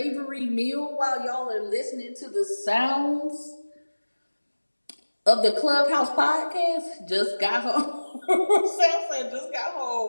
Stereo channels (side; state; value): both; inverted; correlation -1.00